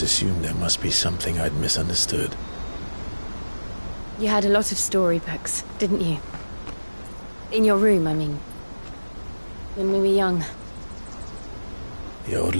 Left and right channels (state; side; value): inverted; both; correlation -1.00